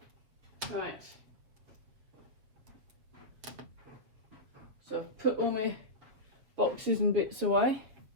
Right. So I've put all my boxes and bits away,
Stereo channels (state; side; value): late; left; 7.5 ms